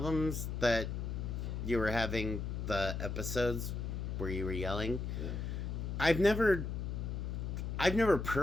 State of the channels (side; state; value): left; noise; hum, 3 dB below the sound